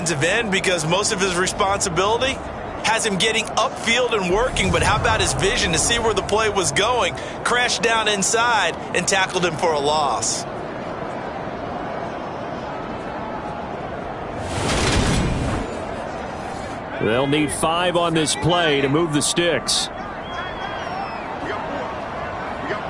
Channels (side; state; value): both; identical; correlation 1.00